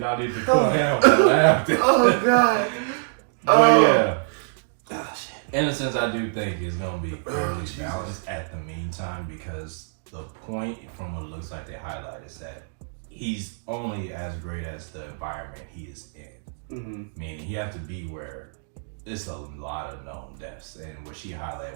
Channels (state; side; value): silent; left; digital silence